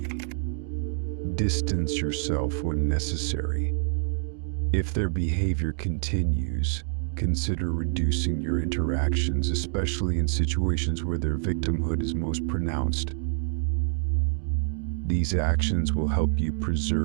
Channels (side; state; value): left; silent; 60 dB below the other